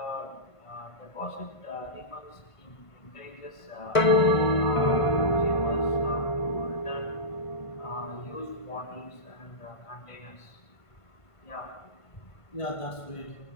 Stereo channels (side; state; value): right; late; 1.5 ms